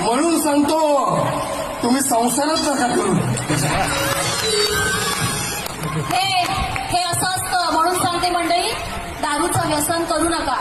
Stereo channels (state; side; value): identical; both; correlation 1.00